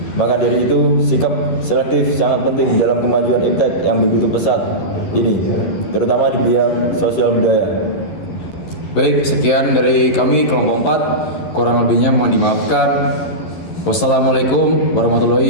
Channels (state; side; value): late; right; 11 ms